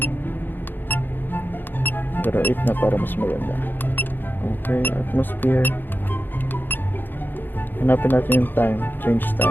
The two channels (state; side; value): late; right; 0.093 ms